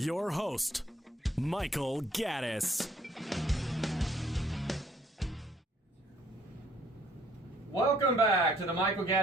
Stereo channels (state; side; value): normal; both; correlation 0.62